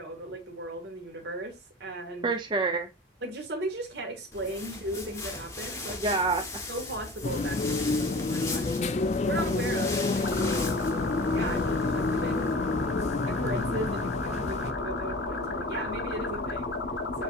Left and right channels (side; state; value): both; normal; correlation 0.37